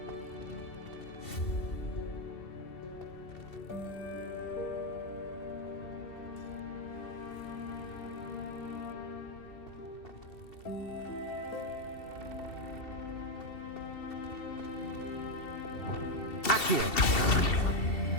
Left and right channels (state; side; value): late; right; 2.7 ms